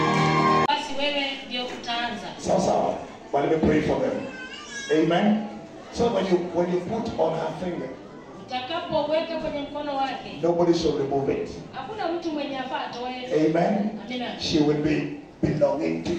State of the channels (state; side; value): identical; both; correlation 1.00